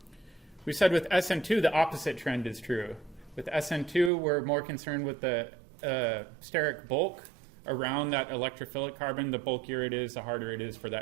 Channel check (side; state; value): left; drops out; at 4.1 s